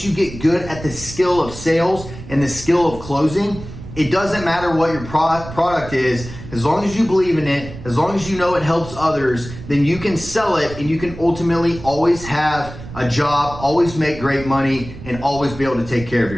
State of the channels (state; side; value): noise; right; rumble, 13 dB below the sound